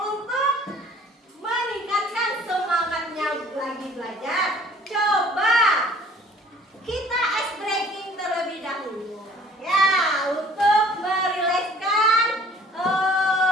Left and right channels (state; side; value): normal; both; correlation 0.53